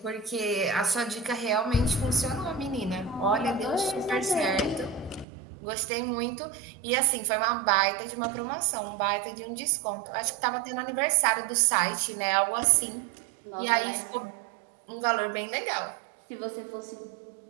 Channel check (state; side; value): drops out; left; at 5.2 s